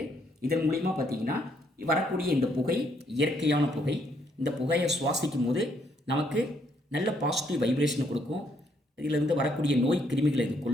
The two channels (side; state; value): both; normal; correlation 0.71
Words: இதன் மூலிமா பார்த்திங்கன்னா வரக்கூடிய இந்த புகை இயற்கையான புகை. இந்த புகையை சுவாசிக்கும் போது நமக்கு நல்ல பாசிட்டிவ் வைப்ரேஷனை கொடுக்கும். இதிலிருந்து வரக்கூடிய நோய் கிருமிகளை இது